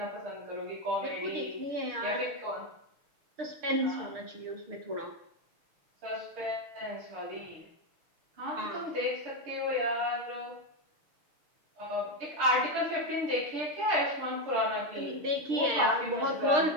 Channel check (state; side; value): late; left; 6.6 ms